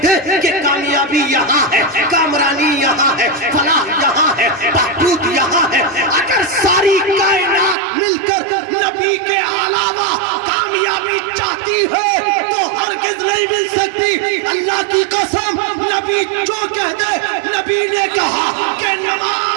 کہ کامیابی یہاں ہے, کامرانی یہاں ہے, فلاح یہاں ہے, بہبود یہاں ہے. اگر ساری کائنات مل کر نبی کے علاوہ کامیابی چاہتی ہے تو ہرگز نہیں مل سکتی. اللہ کی قسم نبی جو کہہ دے, نبی نے کہا کہ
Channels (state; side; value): drops out; left; at 7.8 s